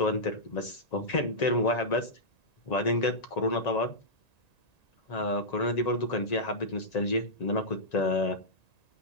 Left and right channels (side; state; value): right; late; 1.9 ms